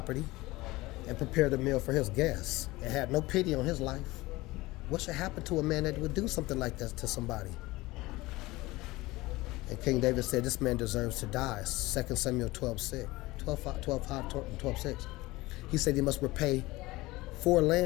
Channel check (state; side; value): quieter; right; 20.1 dB